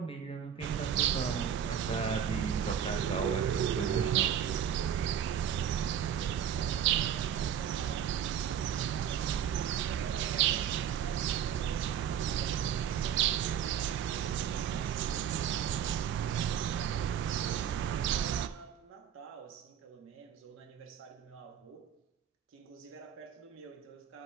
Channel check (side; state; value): left; quieter; 9.0 dB